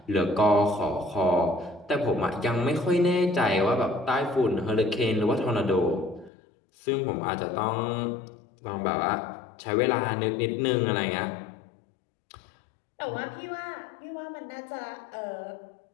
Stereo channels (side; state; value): right; drops out; at 6.3 s